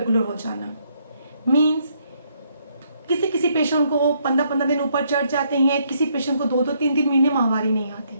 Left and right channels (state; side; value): inverted; both; correlation -0.72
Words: हो जाना, मीन्स किसी किसी पेशेंट को 15-15 दिन ऊपर चढ़ जाते हैं, किसी पेशेंट को 2-2, 3-3 महीने माहवारी नहीं